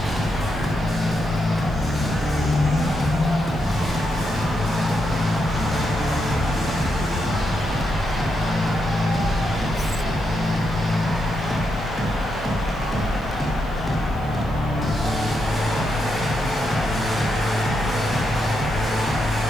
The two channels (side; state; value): right; noise; hiss, 27 dB below the sound